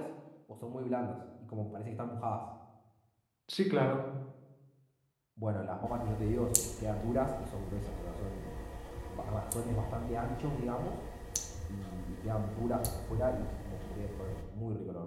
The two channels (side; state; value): both; identical; correlation 1.00